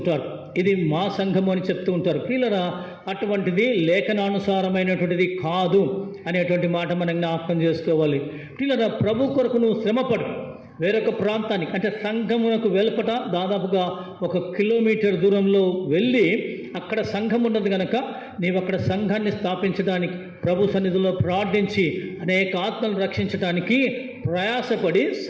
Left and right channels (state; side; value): identical; both; correlation 1.00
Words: ఇది మా సంఘం అని చెప్తూ ఉంటారు. ప్రియులారా, అటువంటిది లేఖనానుసారమైనటువంటిది కాదు అనేటువంటి మాట మనం జ్ఞాపకం చేసుకోవాలి. ప్రియులారా, ప్రభు కొరకు నువ్వు శ్రమపడు. వేరొక ప్రాంతానికి అంటే సంఘమునకు వెలుపట దాదాపుగా 1 కిలోమీటర్ దూరంలో వెళ్ళి అక్కడ సంఘం ఉన్నది కనుక నీవు అక్కడ సంఘాన్ని స్థాపించడానికి, ప్రభు సన్నిధిలో ప్రార్థించి అనేక ఆత్మలను రక్షించడానికి ప్రయాసపడి